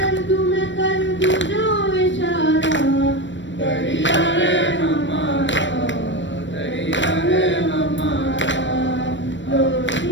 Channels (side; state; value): right; late; 0.54 ms